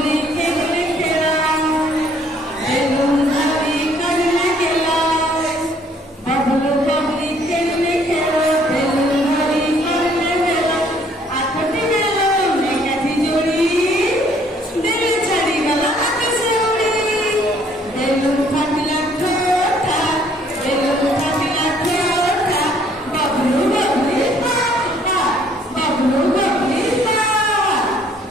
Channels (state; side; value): normal; both; correlation 0.62